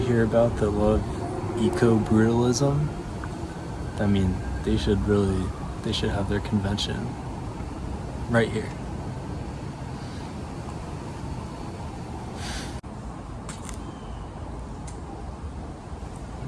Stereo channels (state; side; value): identical; both; correlation 1.00